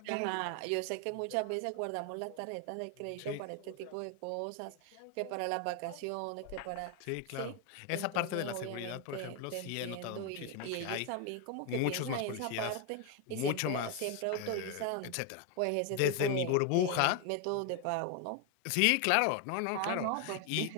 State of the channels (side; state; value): both; different; correlation 0.01